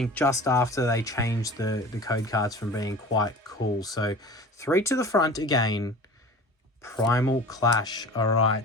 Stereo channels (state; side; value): normal; both; correlation 0.39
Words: just after they changed the code cards from being quite cool. So 3 to the front again. Primal Clash. All